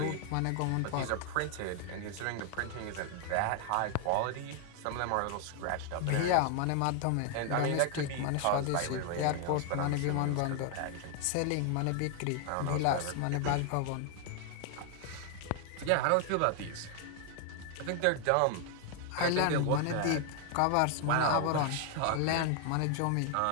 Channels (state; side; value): different; both; correlation 0.00